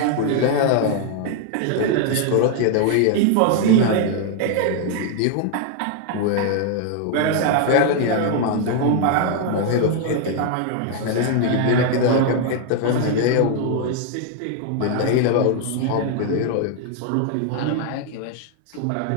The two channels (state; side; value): different; both; correlation 0.00